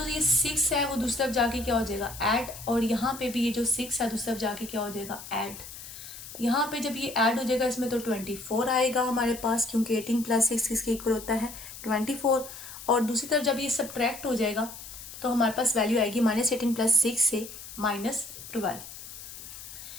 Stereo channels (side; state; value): left; noise; hiss, 13 dB below the sound